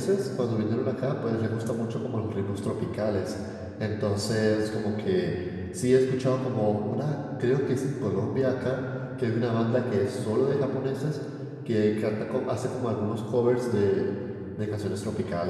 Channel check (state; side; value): identical; both; correlation 1.00